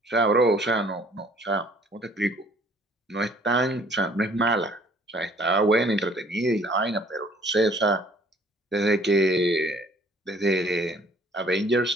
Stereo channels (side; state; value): both; normal; correlation 0.57